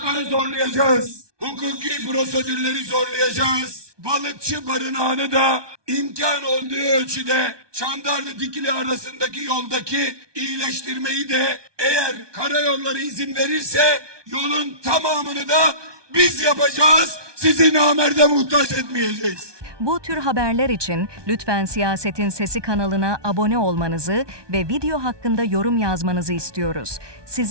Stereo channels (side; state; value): left; late; 1.2 ms